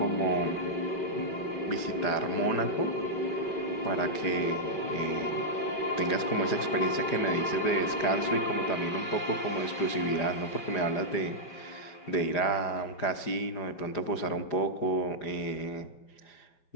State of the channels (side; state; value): right; late; 4.9 ms